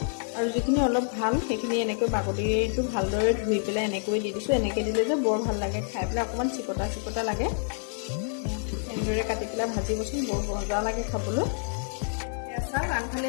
আৰু যিখিনি অলপ ভাল সেইখিনি এনেকৈ বাকলিটো ভালদৰে ধুই পেলাই এনেকৈ দি দিছোঁ এনেকৈ দিলে যে বৰ ভাল লাগে খাই পেলাই অকণমান চিকটা লাগে এনেদৰে কাটি পেলাই ভাজিবচোন বৰ মজা লাগে খাবলৈ এয়া চাওক আনফালে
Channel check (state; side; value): silent; right; 59 dB below the other